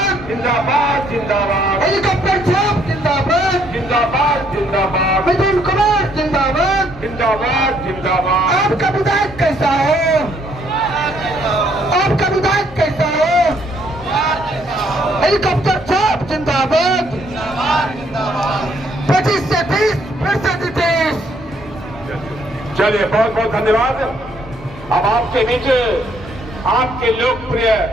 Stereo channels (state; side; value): normal; both; correlation 0.68